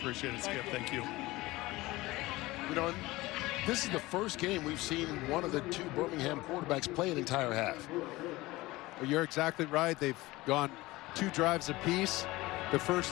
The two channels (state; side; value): quieter; right; 19.7 dB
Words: it, Skip. Thank you. You know, this is the first game we've seen one of the 2 Birmingham quarterbacks play an entire half. Well, you're exactly right. They've gone 2 drives apiece the